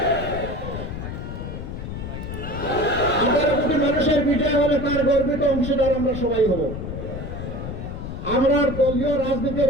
18 কোটি মানুষের বিজয় হলে তার গর্বিত অংশীদার আমরা সবাই হব। আমরা দলীয়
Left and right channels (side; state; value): left; noise; rumble, 7 dB below the sound